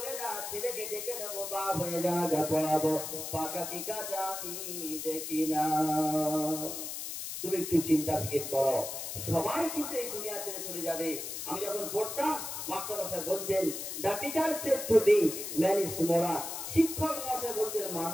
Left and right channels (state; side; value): noise; left; hiss, 6 dB below the sound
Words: না, ছেলেকে ডেকে নেবো, বাপ হয়ে যা পড়াবো, পাকা কি কাজা আমি দেখি না। তুমি একটু চিন্তা ফিকির করো, সবাই কিন্তু এই দুনিয়া ছেড়ে চলে যাবে। আমি যখন পড়তাম, মাস্টার মশাই বলতেন, the teacher said to be man is moral, শিক্ষক মশাই বলতেন